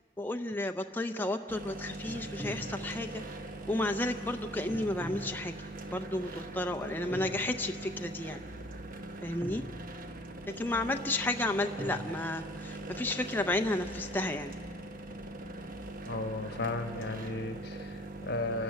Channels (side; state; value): both; normal; correlation 0.55